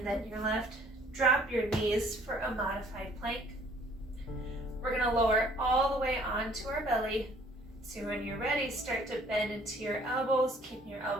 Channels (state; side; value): normal; both; correlation 0.58